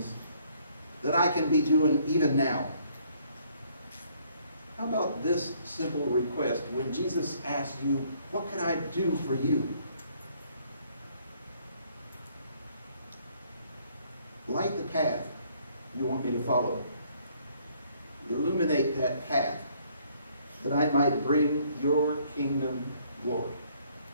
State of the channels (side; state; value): both; inverted; correlation -0.64